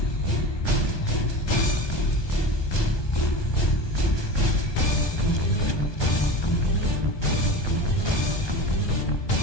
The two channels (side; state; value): right; late; 1.2 ms